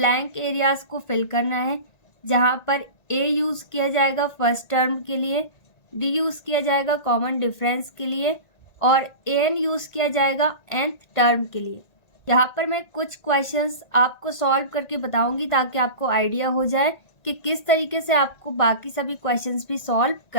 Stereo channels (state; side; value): late; right; 1.9 ms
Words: एरियाज को फिल करना है, जहाँ पर ए यूज किया जाएगा फर्स्ट टर्म के लिए, डी यूज किया जाएगा कॉमन डिफरेंस के लिए और ए एन यूज किया जाएगा nth टर्म के लिए। यहाँ पर मैं कुछ क्वेश्चंस आपको सॉल्व करके बताऊंगी ताकि आपको आइडिया हो जाए कि किस तरीके से आपको बाकी सभी क्वेश्चंस भी सॉल्व